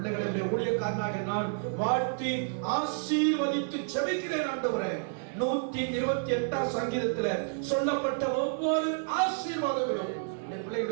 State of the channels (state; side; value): silent; left; digital silence